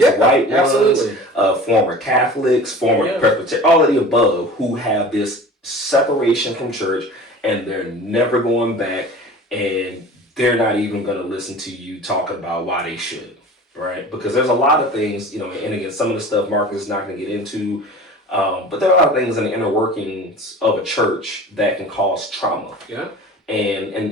white ones, former Catholics, former Presbyterian, all of the above, who have this separation from church, and they're never going back, and they're not even going to listen to you talking about why they should, right? Because there's a lot of things, and again, some of the stuff Marcus is not going to get into, but there are a lot of things in the inner workings of a church that can cause trauma. Yeah.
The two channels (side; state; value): both; normal; correlation 0.39